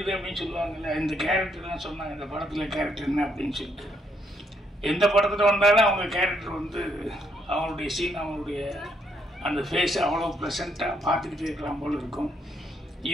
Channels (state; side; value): normal; both; correlation 0.73